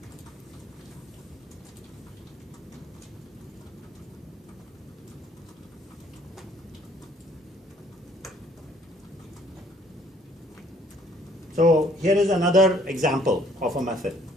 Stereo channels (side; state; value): both; normal; correlation 0.60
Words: So here is another example of a method.